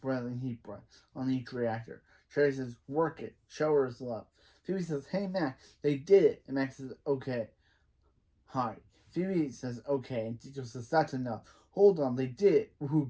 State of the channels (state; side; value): identical; both; correlation 1.00